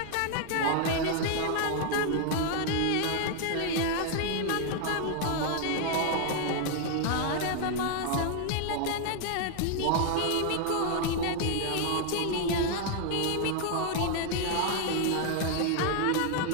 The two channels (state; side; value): different; both; correlation 0.00